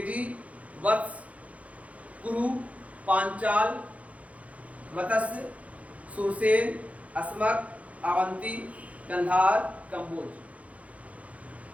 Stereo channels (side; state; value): left; late; 0.066 ms